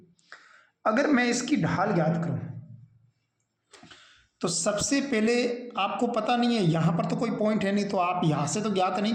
अगर मैं इसकी ढाल ज्ञात करूं तो सबसे पहले आपको पता नहीं है, यहाँ पर तो कोई पॉइंट है नहीं तो आप यहाँ से तो ज्ञात नहीं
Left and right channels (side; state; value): both; identical; correlation 1.00